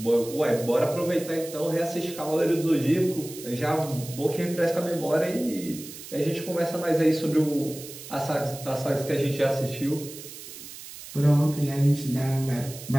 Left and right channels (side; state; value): right; noise; hiss, 14 dB below the sound